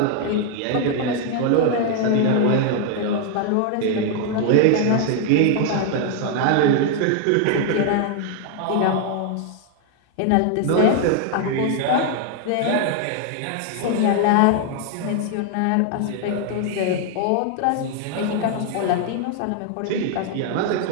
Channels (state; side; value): different; both; correlation 0.00